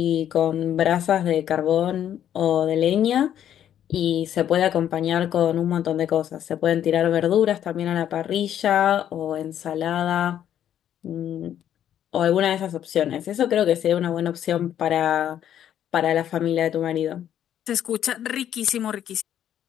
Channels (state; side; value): quieter; right; 10.4 dB